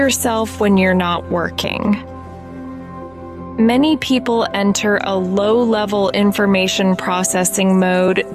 when you're not working. Many people enter a low-level information processing mode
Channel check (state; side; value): noise; right; hum, 30 dB below the sound